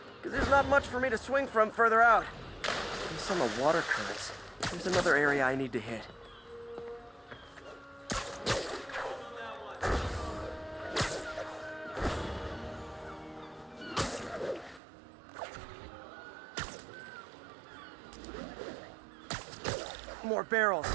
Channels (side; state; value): left; drops out; at 14.8 s